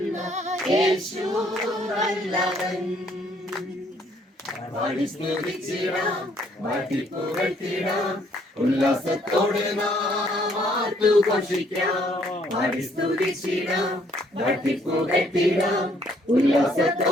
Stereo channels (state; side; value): normal; both; correlation 0.66